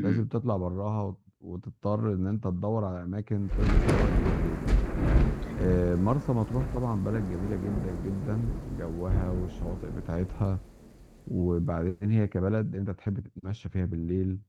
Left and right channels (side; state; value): both; identical; correlation 1.00